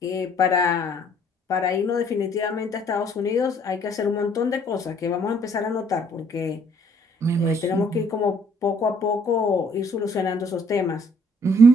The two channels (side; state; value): both; normal; correlation 0.62